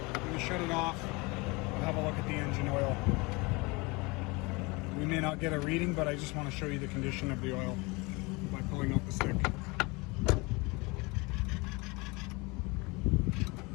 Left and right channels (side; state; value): right; quieter; 26.1 dB